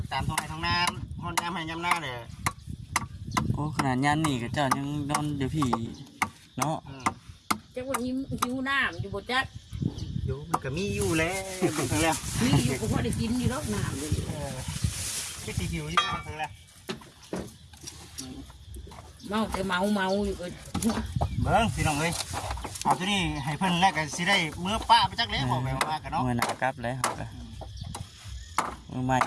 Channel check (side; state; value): both; identical; correlation 1.00